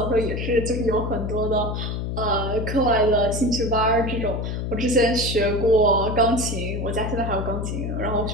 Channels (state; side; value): noise; left; hum, 3 dB below the sound